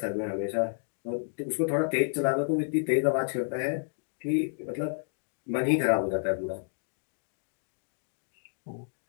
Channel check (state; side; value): silent; right; digital silence